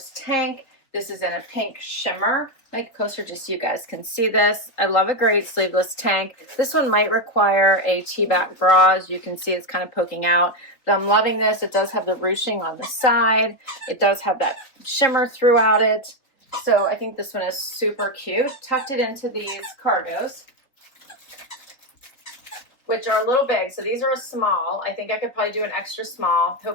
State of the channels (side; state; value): right; late; 4.0 ms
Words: tank. This is in a pink shimmer. Make it closer just so you guys can see this. I love a great sleeveless tank. This one might require a T-back bra. As you can see, it's kind of poking out. But I'm loving this. It does have the ruching on the side. It does have that shimmer throughout it. So I think this one is super cute. Tucked it into these cargos, which are a little big. So these are a small. I think I could probably do an extra small.